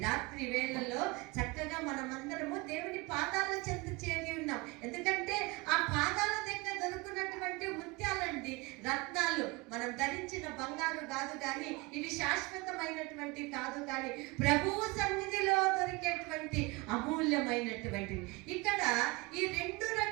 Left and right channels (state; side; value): quieter; left; 25.2 dB